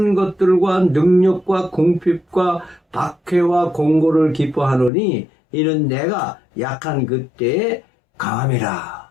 것들과 능력과 궁핍과 박해와 공고를 기뻐하노니 이는 내가 약한 그때에 강함이라.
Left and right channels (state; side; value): drops out; right; at 4.9 s